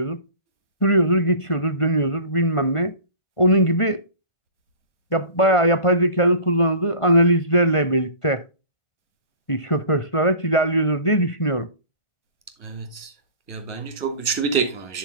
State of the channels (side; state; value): right; late; 1.0 ms